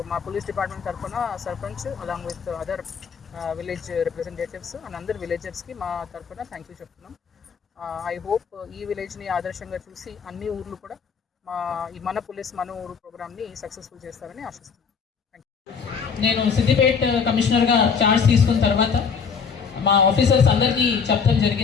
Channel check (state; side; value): quieter; right; 6.1 dB